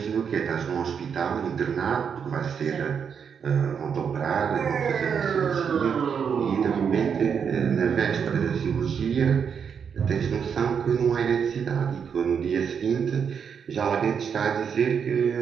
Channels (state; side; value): quieter; left; 7.0 dB